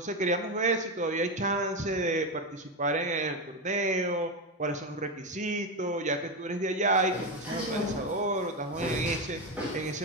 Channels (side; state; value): both; normal; correlation 0.13